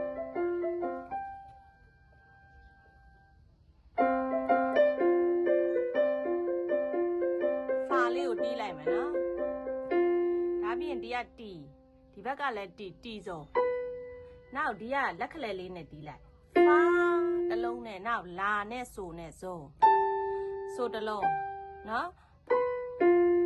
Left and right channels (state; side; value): identical; both; correlation 1.00